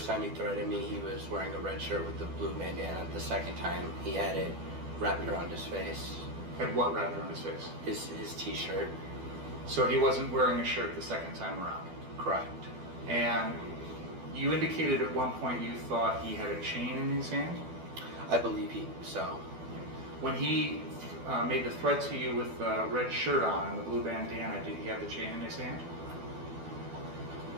time he threatened me, he was wearing a red shirt with the blue bandana. The second time, he had it wrapped around his face. Had what wrapped around his face? His t-shirt. So he wasn't wearing a shirt the second time around? Correct. And you indicated at one point you thought he had a chain in his hand? I believe so. When he made the threat to you with the red shirt on and the blue bandana, did he have the chain in his hand?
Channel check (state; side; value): late; left; 12 ms